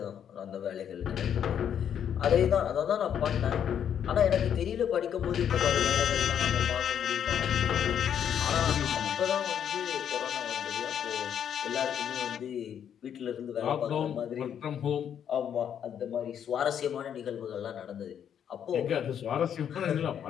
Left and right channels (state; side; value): quieter; right; 8.9 dB